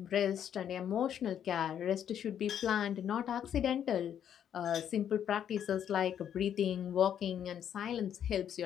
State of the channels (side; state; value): right; quieter; 9.4 dB